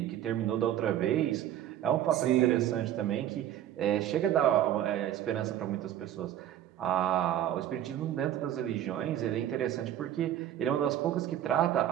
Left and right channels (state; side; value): quieter; left; 11.6 dB